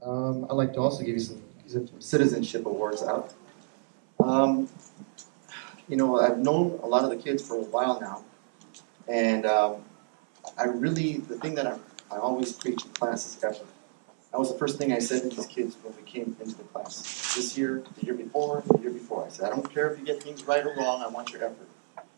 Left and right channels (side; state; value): left; silent; 58 dB below the other